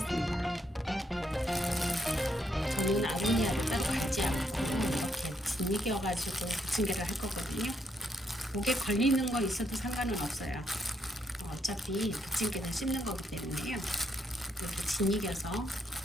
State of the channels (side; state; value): both; normal; correlation 0.77